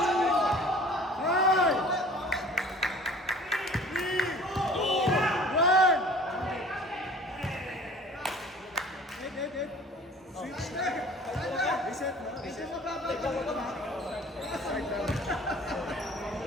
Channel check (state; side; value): normal; both; correlation 0.47